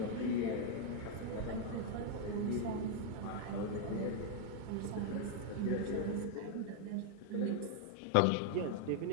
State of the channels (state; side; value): different; both; correlation 0.00